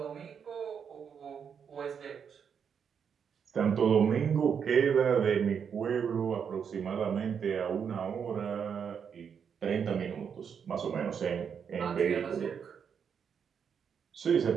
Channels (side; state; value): left; quieter; 7.1 dB